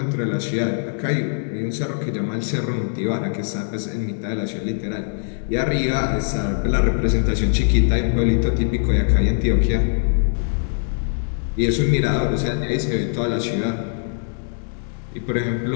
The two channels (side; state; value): right; silent; digital silence